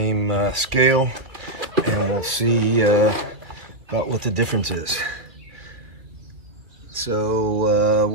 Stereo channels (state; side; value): late; left; 2.7 ms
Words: scale, and we'll see about what the difference is. So